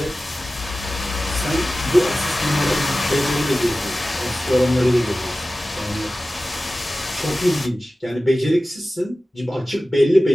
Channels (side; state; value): both; normal; correlation 0.96